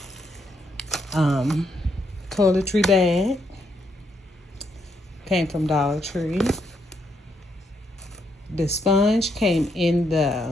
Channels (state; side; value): normal; both; correlation 0.76